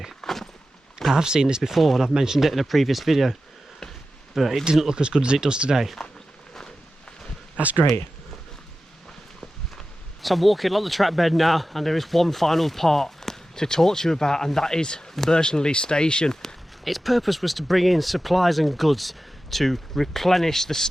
I have seen this before and I've mentioned it in a previous video. but it didn't look as good as it does today. That's great. So I'm walking along the track bed now, and there is one final part to talk to you about, and that is Burtonley Station. Its purpose was to bring in supplies and goods to replenish the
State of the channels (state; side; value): normal; both; correlation 0.94